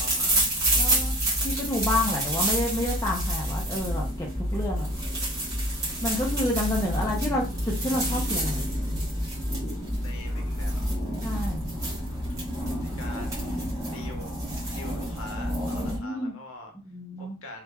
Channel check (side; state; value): both; normal; correlation 0.54